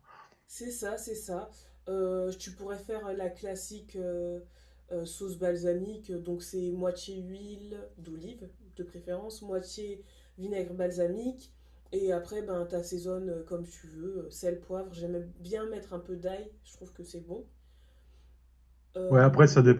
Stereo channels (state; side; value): identical; both; correlation 1.00